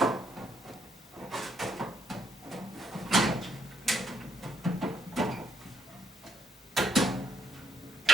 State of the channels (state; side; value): normal; both; correlation 0.75